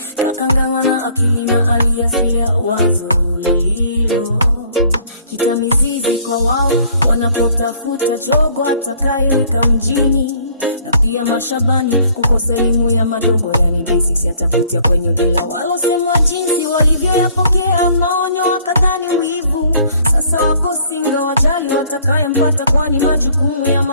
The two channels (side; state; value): both; inverted; correlation -0.58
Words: kakanganywa na akili na aliasili ya wazo lililo kita mizizi kwa wao wanapotafuta jogo atakayewika mjini. Na pia mashabani kukosa elimu ya madogo, yani basics yatafutia kwenye dila. Walosemwa jinsi walivyoyapokea maonyo wakadhani wivu, sasa wako singa wajali watakayempata, kwani majukumu ya